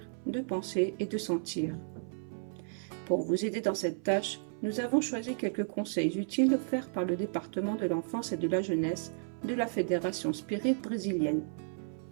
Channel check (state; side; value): silent; left; 55 dB below the other